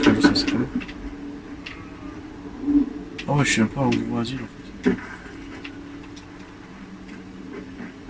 comme ça, c'est comme ça. Ah ouais, je suis même pas au niveau asile en fait.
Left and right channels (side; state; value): both; identical; correlation 1.00